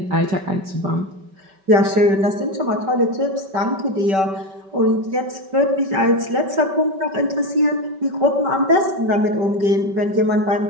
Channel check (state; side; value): late; left; 5.2 ms